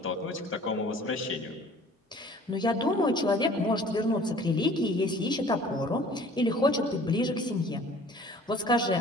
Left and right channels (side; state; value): both; normal; correlation 0.50